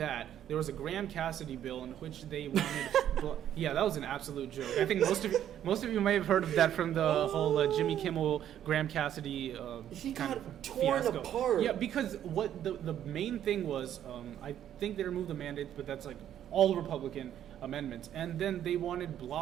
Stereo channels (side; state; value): left; quieter; 10.7 dB